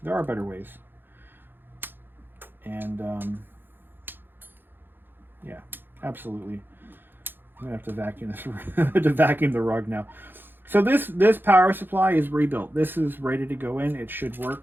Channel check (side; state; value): left; late; 0.098 ms